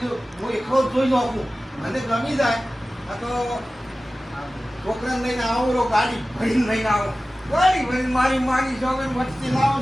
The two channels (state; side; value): normal; both; correlation 0.96